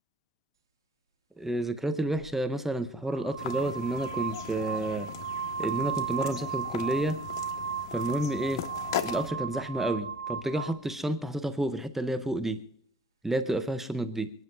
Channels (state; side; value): normal; both; correlation 0.52